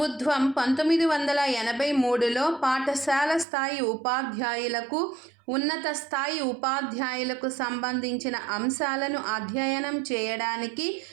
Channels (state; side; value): drops out; left; at 3.5 s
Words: 1983లో పాఠశాల స్థాయి ఉపాధ్యాయులకు, ఉన్నత స్థాయి ఉపాధ్యాయులకు సంబంధించిన అంశాలను అధ్యయనం చేయడానికి